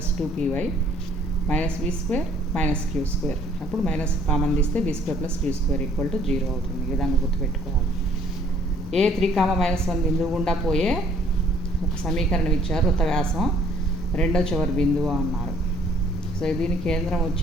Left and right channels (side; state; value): both; normal; correlation 0.60